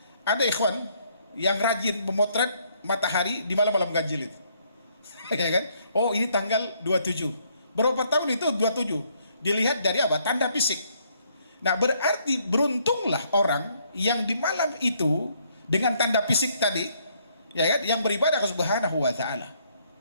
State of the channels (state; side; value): inverted; both; correlation -0.69